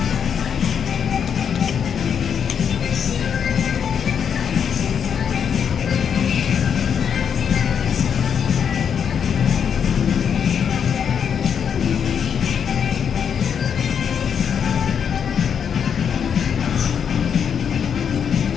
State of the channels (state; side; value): quieter; right; 7.5 dB